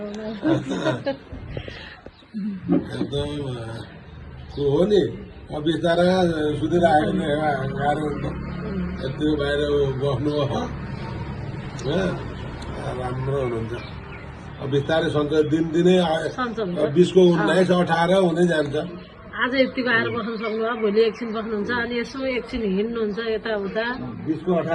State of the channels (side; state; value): both; identical; correlation 1.00